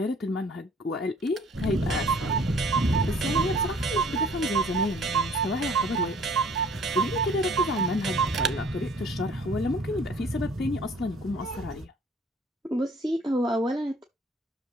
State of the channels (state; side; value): normal; both; correlation 0.54